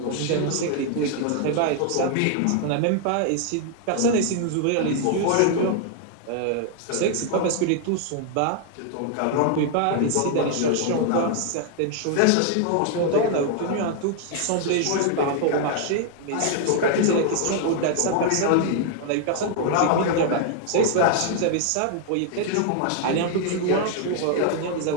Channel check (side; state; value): both; different; correlation 0.00